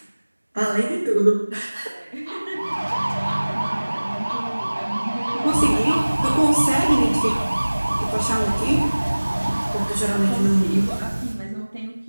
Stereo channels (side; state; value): both; inverted; correlation -1.00